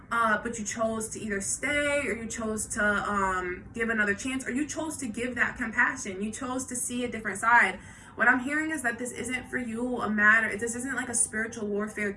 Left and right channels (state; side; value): identical; both; correlation 1.00